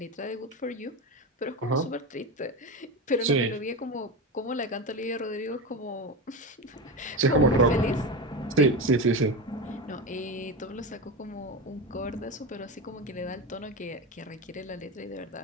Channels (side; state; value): both; normal; correlation 0.21